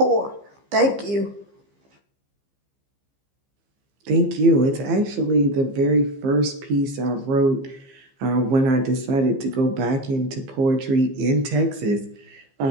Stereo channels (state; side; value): late; left; 15 ms